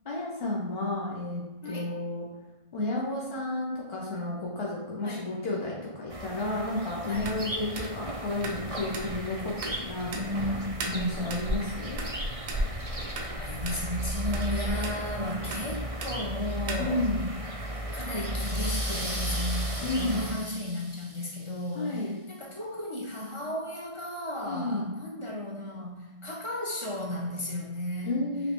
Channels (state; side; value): late; left; 1.5 ms